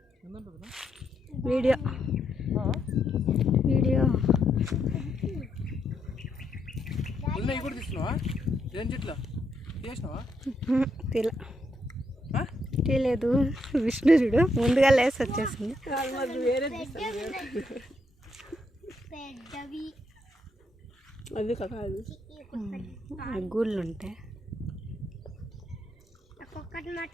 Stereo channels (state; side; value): normal; both; correlation 0.78